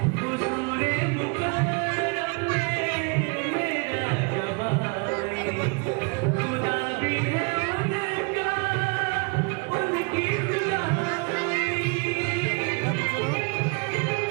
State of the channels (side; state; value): left; quieter; 34.8 dB